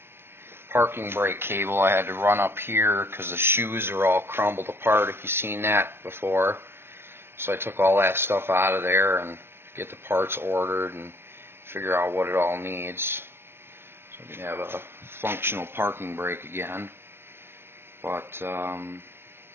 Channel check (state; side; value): late; left; 0.11 ms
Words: parking brake cable I had to run up here because the shoes are all crumbled apart, if you've seen that before. So I took all that stuff out of there and get the parts ordered and figure out what it all needs so we can have a functional parking brake again. But